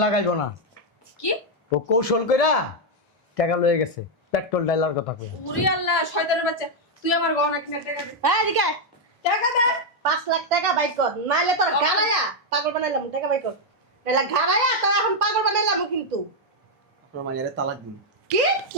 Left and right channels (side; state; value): both; normal; correlation 0.00